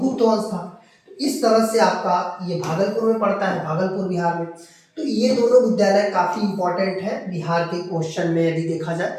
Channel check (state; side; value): identical; both; correlation 1.00